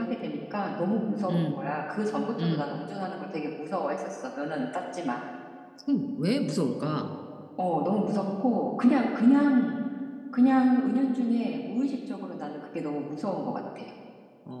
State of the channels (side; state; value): both; identical; correlation 1.00